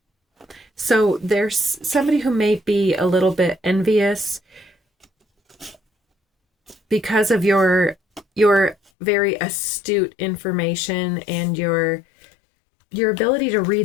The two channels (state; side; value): drops out; right; at 8.8 s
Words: So there's somebody who may be a little bit envious because of your very astute information and your ability to